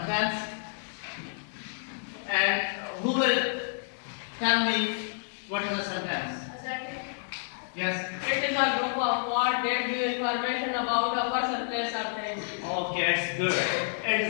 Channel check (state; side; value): silent; right; digital silence